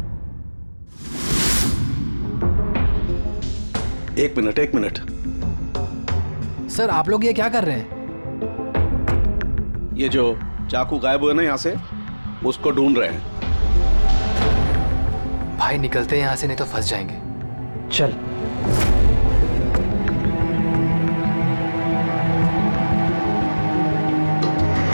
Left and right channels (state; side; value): inverted; both; correlation -1.00